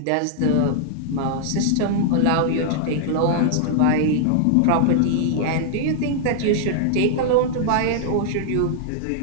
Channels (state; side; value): different; both; correlation -0.01